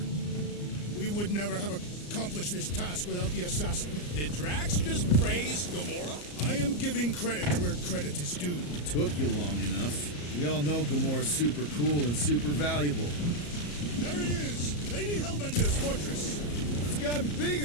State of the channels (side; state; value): right; late; 34 ms